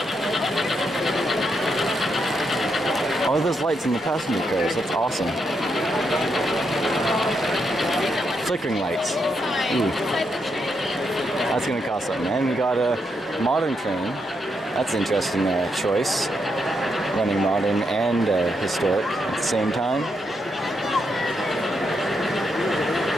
Oh, there's lights in the passenger cars. That's awesome. Flickering lights. Ooh. That's gonna cost something. And we got a modern train. That's an interesting choice. Running modern and historic at the same time.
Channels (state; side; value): normal; both; correlation 0.80